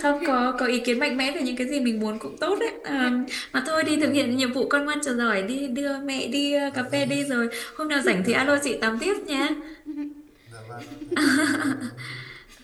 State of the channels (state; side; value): identical; both; correlation 1.00